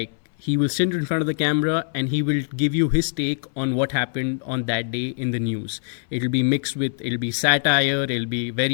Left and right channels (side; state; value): right; silent; 60 dB below the other